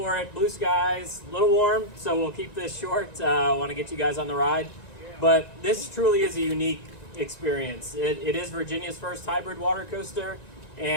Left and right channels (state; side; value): late; right; 1.9 ms